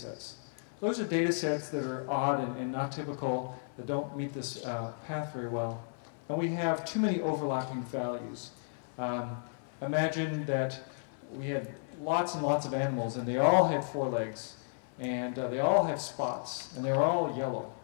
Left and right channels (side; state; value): right; silent; 56 dB below the other